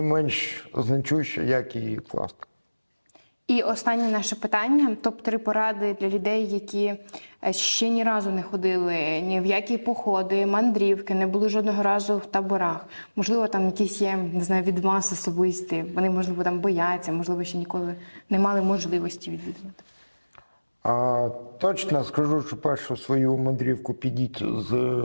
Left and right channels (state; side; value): inverted; both; correlation -1.00